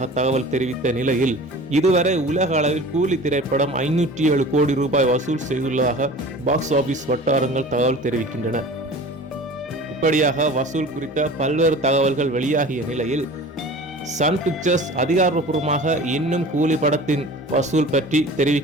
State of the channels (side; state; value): both; normal; correlation 0.40